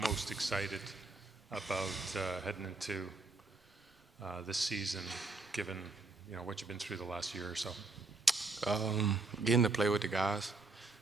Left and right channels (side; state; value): left; quieter; 3.5 dB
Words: excited about heading into this season, given what you've been through the last year or so? Getting to play with the guys,